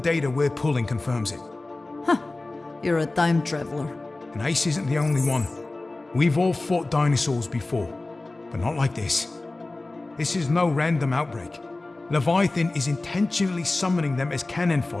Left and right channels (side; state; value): right; quieter; 3.1 dB